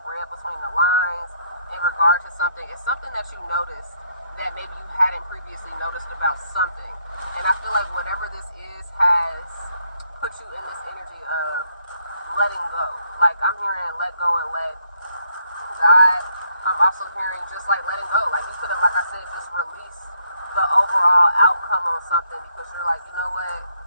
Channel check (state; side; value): inverted; both; correlation -0.71